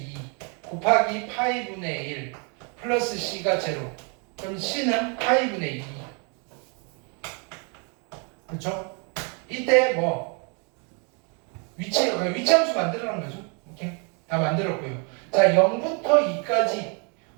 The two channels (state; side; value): quieter; left; 35.7 dB